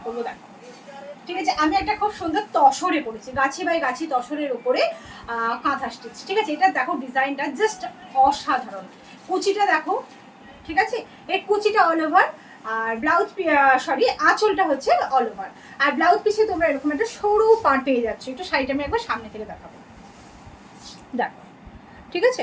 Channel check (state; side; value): identical; both; correlation 1.00